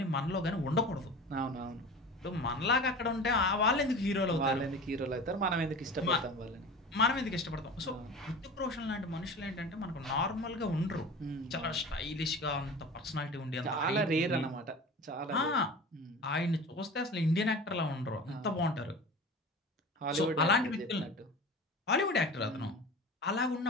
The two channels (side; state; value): both; normal; correlation 0.35